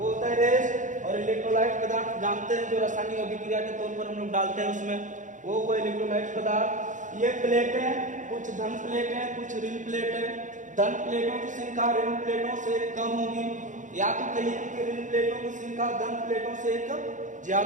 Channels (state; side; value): late; left; 0.36 ms